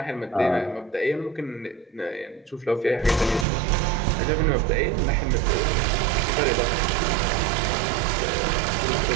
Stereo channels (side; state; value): left; drops out; at 3.5 s